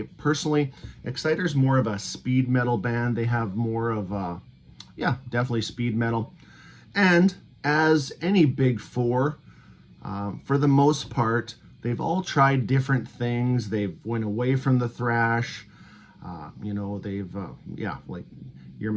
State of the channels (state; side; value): identical; both; correlation 1.00